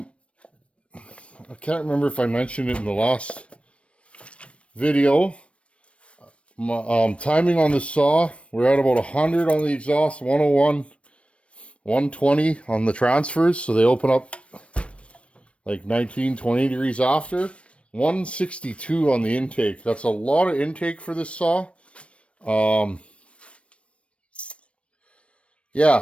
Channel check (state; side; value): late; right; 0.061 ms